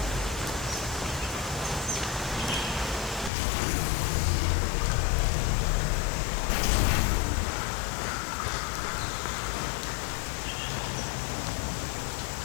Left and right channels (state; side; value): drops out; right; at 3.3 s